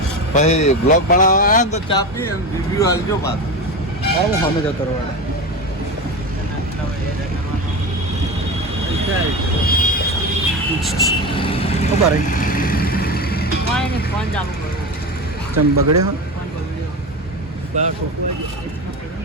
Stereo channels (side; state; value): both; normal; correlation 0.23